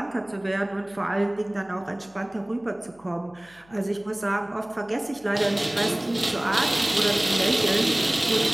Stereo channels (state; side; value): noise; left; hum, 29 dB below the sound